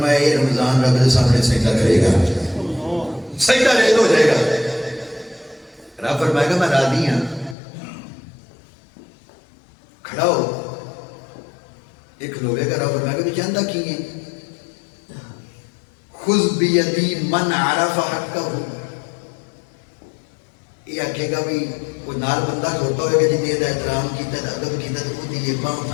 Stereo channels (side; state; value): right; drops out; at 7.6 s